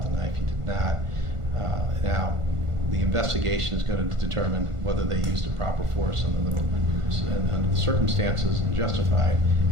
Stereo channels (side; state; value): left; late; 1.5 ms